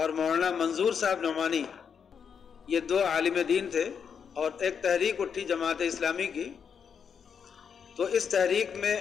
مولانا منظور صاحب نعمانی، یہ 2 عالم دین تھے، اور ایک تحریک اٹھی جماعت اسلامی کی. تو اس تحریک میں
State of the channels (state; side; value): quieter; right; 6.9 dB